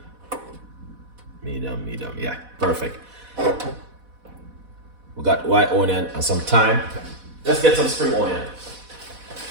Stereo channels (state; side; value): late; left; 4.1 ms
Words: medium, yeah, perfect. We got white onion and some thyme. Let's get some spring onion.